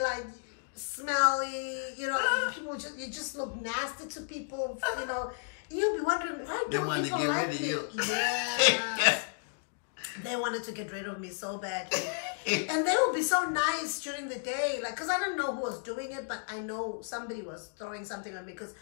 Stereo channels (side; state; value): right; silent; digital silence